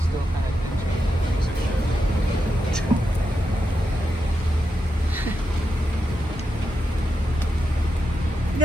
still kind of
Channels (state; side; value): normal; both; correlation 0.87